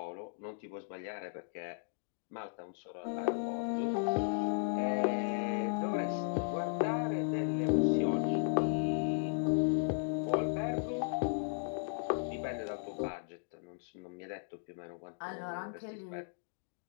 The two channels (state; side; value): silent; right; digital silence